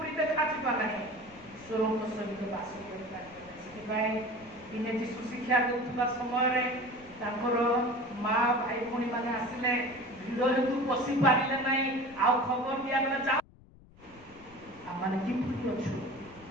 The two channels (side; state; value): left; noise; rumble, 24 dB below the sound